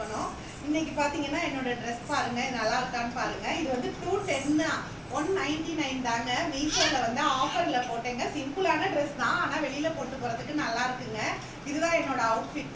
இன்னைக்கு பார்த்தீங்கன்னா என்னோட ட்ரெஸ் பாருங்க, இது நல்லா இருக்கான்னு பாருங்க. இது வந்து 210 199 தாங்க. மீஷோவில் வந்து ஆஃபரில் போட்டேங்க. சிம்பிளான ட்ரெஸ் தான், ஆனால் வெளியில் போட்டு போகிறதுக்கு நல்லா இருக்குங்க. இதுதான் என்னோட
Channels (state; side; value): identical; both; correlation 1.00